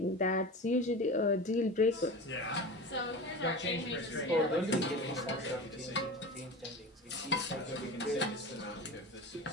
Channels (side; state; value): both; normal; correlation 0.30